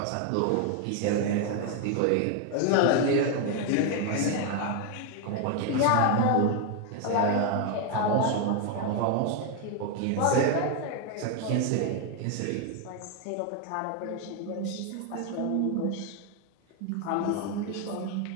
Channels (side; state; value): both; different; correlation 0.01